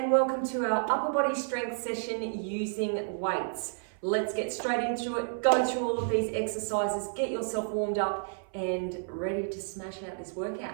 welcome to our upper body strength session using weights. Let's get straight into it, go through all of these exercises, get yourself warmed up and ready to smash out this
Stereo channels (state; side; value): silent; left; 55 dB below the other